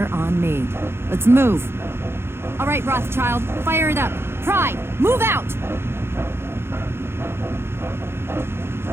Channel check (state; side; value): late; left; 0.12 ms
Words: on me. Let's move. All right, Rothschild, fire it up. Pride, move out!